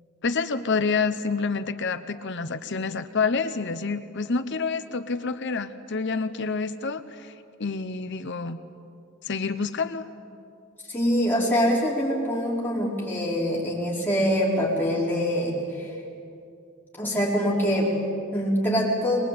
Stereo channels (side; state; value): both; normal; correlation 0.37